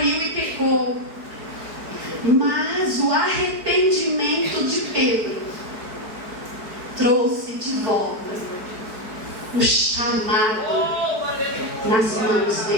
e pecou. Mas o arrependimento de Pedro trouxe de volta o chamado nas mãos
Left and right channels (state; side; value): late; left; 4.7 ms